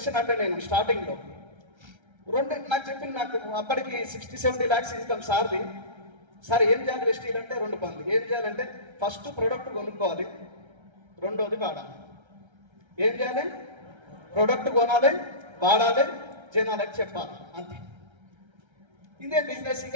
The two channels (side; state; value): left; late; 1.3 ms